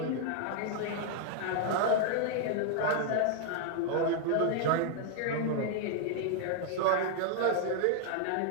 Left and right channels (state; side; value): different; both; correlation 0.00